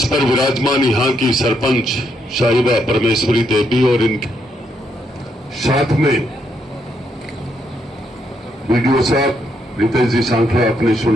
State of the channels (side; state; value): both; normal; correlation 0.77